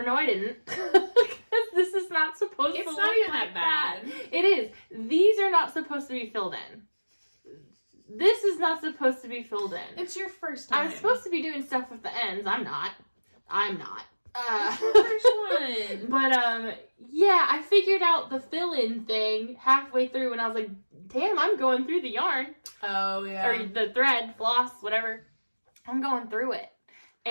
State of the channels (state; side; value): inverted; both; correlation -1.00